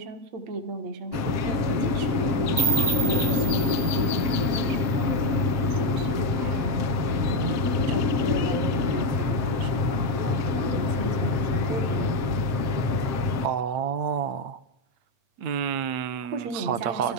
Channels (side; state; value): left; late; 7.5 ms